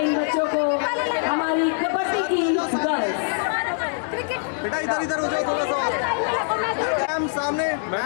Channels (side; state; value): right; silent; 60 dB below the other